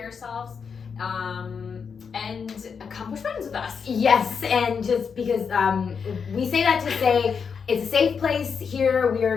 yourselves and come push buttons with us. Yes, and just because we say that to say it's a safe place here. We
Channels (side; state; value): right; quieter; 6.1 dB